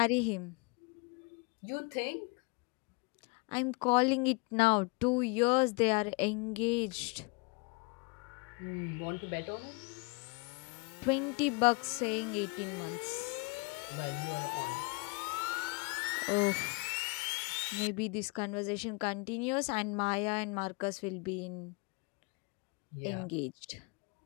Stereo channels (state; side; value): quieter; right; 30.3 dB